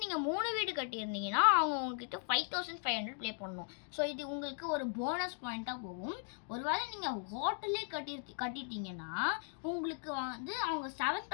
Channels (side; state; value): right; silent; 53 dB below the other